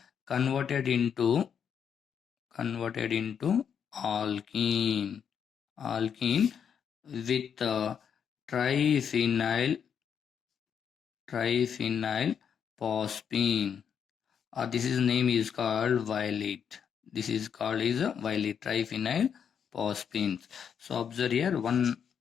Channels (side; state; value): right; quieter; 7.6 dB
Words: converted into alkene with triphenyl phosphine. This is name is called violet. This is called is a violet triphenyl phosphine. So observe here one